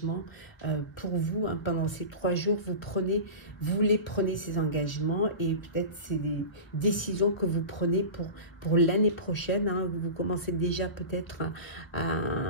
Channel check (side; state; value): right; late; 1.1 ms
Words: pour vous. Hein, pendant ces 3 jours, vous les prenez ces engagements et peut-être c'est des décisions que vous prenez pour l'année prochaine. Hein, vous commencez déjà peut-être